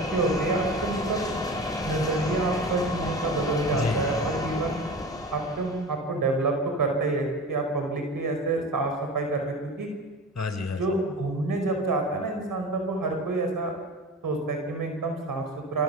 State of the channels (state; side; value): normal; both; correlation 0.32